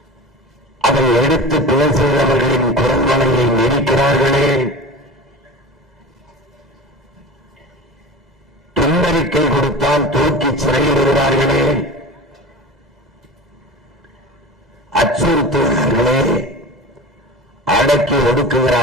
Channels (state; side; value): normal; both; correlation 0.33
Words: அதை எடுத்து பேசுகிறவர்களின் குரல்வளையை நெரிக்கிறார்களே. துண்டறிக்கை கொடுத்தால் தூக்கி சிறையில் விடுவார்களே, அச்சுறுத்துகிறார்களே, அடக்கி